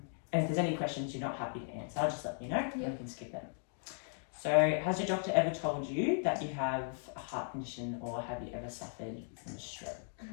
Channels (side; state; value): right; silent; digital silence